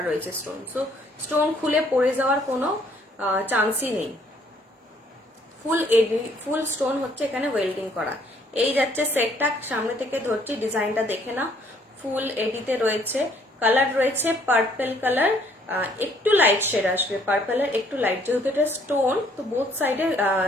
রয়েছে স্টোন, সো স্টোন খুলে পড়ে যাওয়ার কোনো চান্সই নেই। ফুল এডি, ফুল স্টোন হচ্ছে এখানে ওয়েল্ডিং করা। এই যাচ্ছে সেটটা, সামনে থেকে ধরছি, ডিজাইনটা দেখে না, ফুল এডিতে রয়েছে, কালার রয়েছে পার্পল কালার, একটু লাইট শেড আসবে, পার্পলের একটু লাইট, যেহেতু এটা স্টোন তো বোথ সাইডে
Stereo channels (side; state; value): both; normal; correlation 0.64